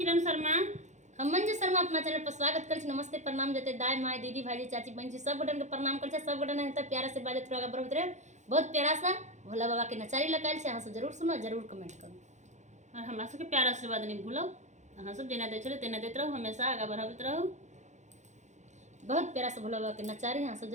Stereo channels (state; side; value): late; left; 0.34 ms